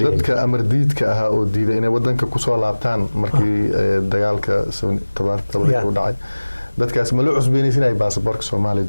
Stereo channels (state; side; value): inverted; both; correlation -1.00